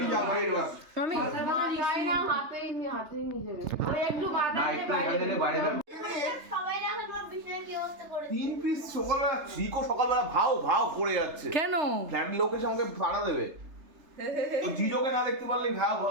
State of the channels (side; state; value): left; late; 3.3 ms